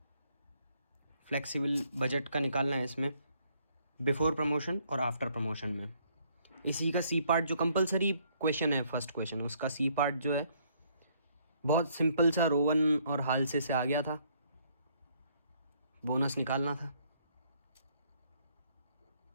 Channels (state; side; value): inverted; both; correlation -0.67